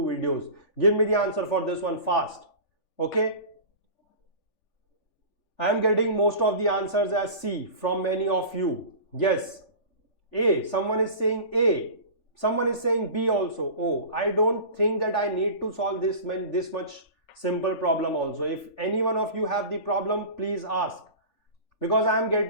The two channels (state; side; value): late; right; 3.4 ms